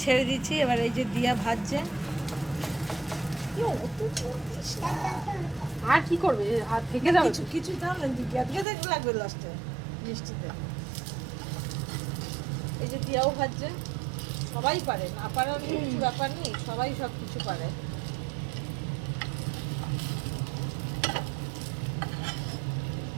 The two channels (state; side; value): drops out; left; at 8.7 s